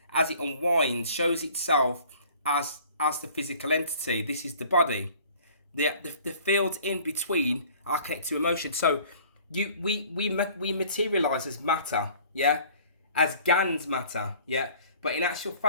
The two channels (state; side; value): inverted; both; correlation -0.51